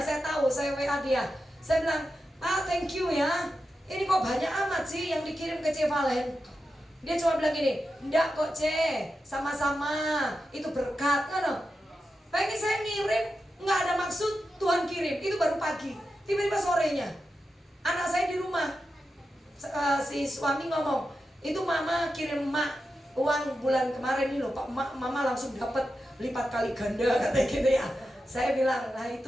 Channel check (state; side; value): normal; both; correlation 0.90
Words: saya tahu, saya WA dia. Saya bilang, thank you ya. Ini kok banyak amat sih yang dikirim ke C. Valen. Dia cuma bilang gini, enggak kok C, sama-sama, itu berkat kan. Pengen saya ngirim, nggak ada maksud, Tuhan kirim, itu baru pagi. Tiba-tiba sorenya, anak saya di rumah, si suami ngomong, itu mama kirim mak uang bulan kemarin ini loh Pak, mama langsung dapat lipat kali ganda katanya gitu ya. Saya bilang, nah